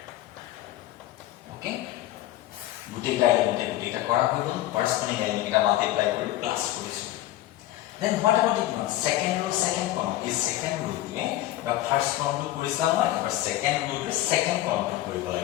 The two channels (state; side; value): quieter; right; 14.9 dB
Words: okay গুটেটা element গুটেটা করা হইল corresponding element multiply করে plus করিছো then what about the second row second column is second row তে বা first column two কৰিছা নহয় এবাৰ second row তে second column টু কৰিব